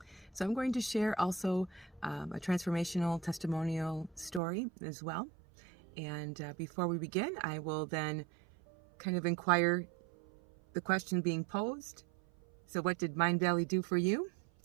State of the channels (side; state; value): left; drops out; at 4.4 s